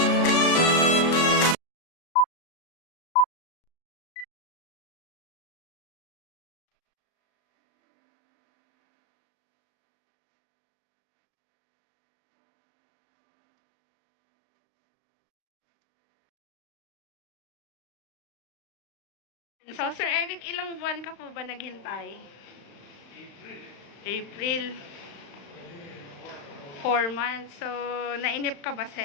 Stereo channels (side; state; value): right; late; 35 ms